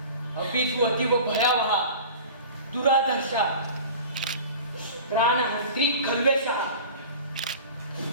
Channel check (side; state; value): both; inverted; correlation -0.38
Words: अपि तु अतीव भयावहा दुराधर्षा प्राणहन्त्री खल्वेषः।